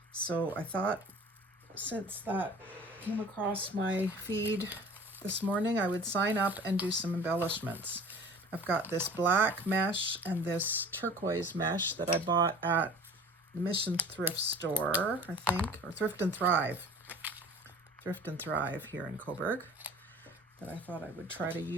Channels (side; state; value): both; normal; correlation 0.43